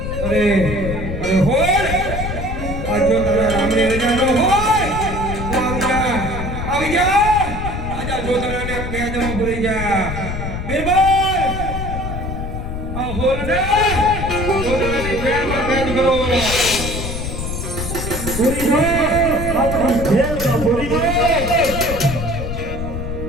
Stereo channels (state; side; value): noise; left; rumble, 5 dB below the sound